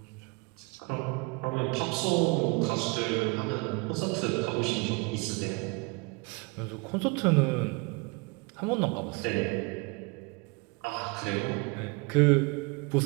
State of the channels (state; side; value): quieter; left; 29.0 dB